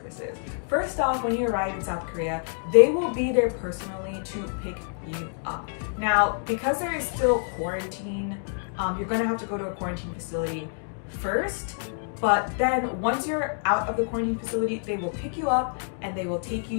First off, when you arrive in South Korea, they will be there personally to pick you up. Now, because there is still quarantine, you're gonna have to go to a quarantine facility first, but then once you're out of the quarantine facility, they will pick you up and they will take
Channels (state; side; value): silent; right; 60 dB below the other